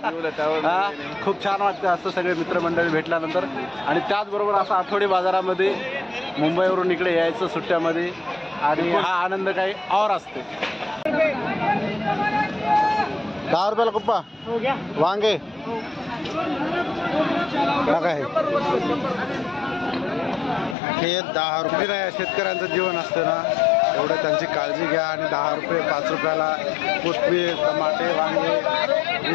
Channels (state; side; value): drops out; right; at 20.8 s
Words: खूप छान वाटतं असं सगळे मित्रमंडळी भेटल्यानंतर. आणि त्याचबरोबर असं आठवडी बाजारामध्ये मुंबईवरून इकडे यायचं सुट्ट्यामध्ये आणि हा आनंद काही और असते. 10 रुपयाला कुप्पा वांगे काय हे 10 रुपये नाही. शेतकऱ्यांचं जीवन असतं ना, एवढं त्यांची काळजी घ्या. आणि 10 रुपये 5 रुपयाला कोथिंबीर, टमाटे, वांगे